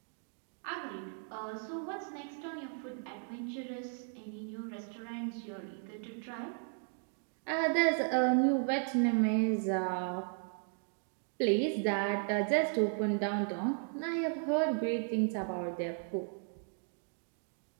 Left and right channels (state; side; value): silent; left; 54 dB below the other